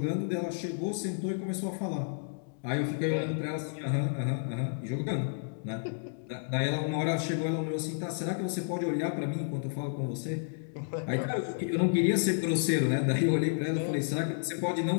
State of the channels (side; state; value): right; silent; digital silence